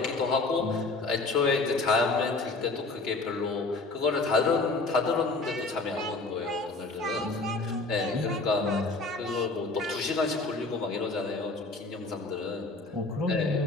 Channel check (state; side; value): quieter; right; 3.4 dB